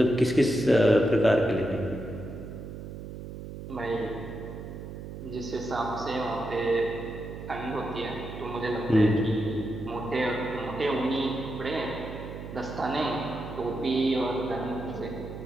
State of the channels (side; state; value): right; noise; hum, 10 dB below the sound